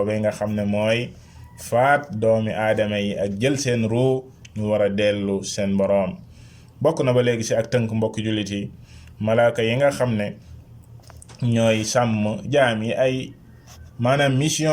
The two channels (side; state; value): both; identical; correlation 1.00